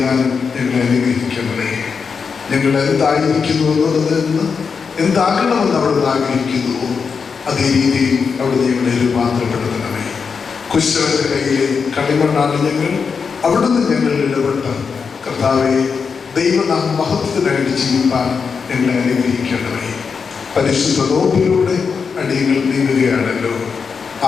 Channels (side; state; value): right; quieter; 5.7 dB